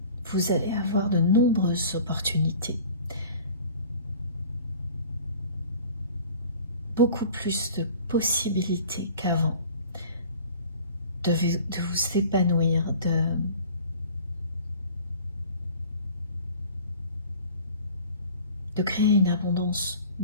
vous allez avoir de nombreuses opportunités, beaucoup plus de possibilités qu'avant de vous épanouir, de créer une abondance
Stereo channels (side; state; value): both; inverted; correlation -0.45